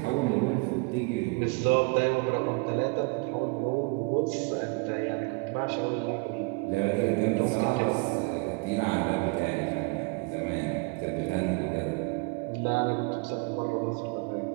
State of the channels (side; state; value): left; quieter; 29.6 dB